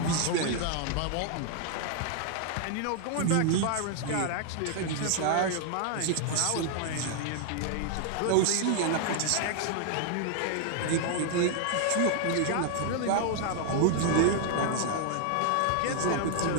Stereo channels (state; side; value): different; both; correlation 0.00